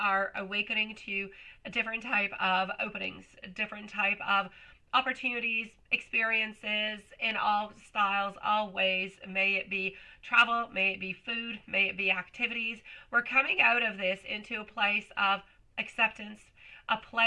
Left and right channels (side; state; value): both; identical; correlation 1.00